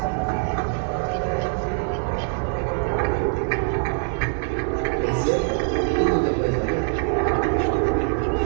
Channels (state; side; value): silent; left; digital silence